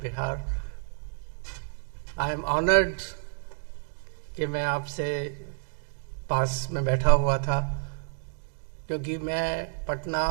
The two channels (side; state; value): left; silent; digital silence